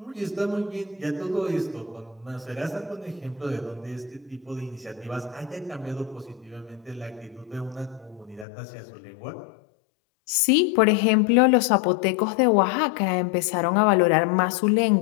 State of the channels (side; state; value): right; drops out; at 8.5 s